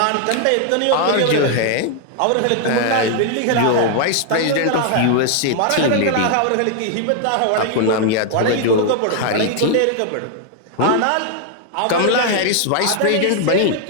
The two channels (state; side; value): different; both; correlation 0.00